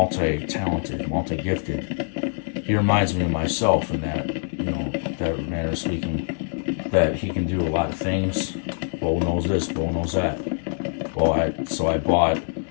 multi-gifted. He reminds me of myself in that manner of speaking, that he can do a lot of things. Bo knows this, Bo knows that. So I bought,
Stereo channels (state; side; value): silent; right; 57 dB below the other